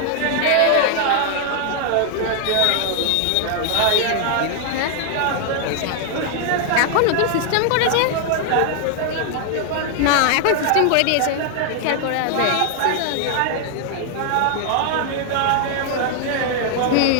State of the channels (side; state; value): both; different; correlation 0.00